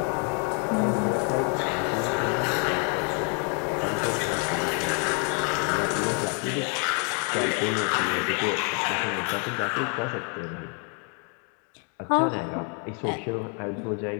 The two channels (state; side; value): quieter; right; 39.3 dB